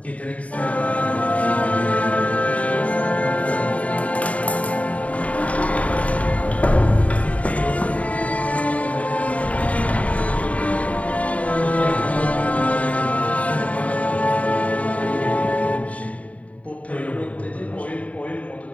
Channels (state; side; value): late; right; 0.068 ms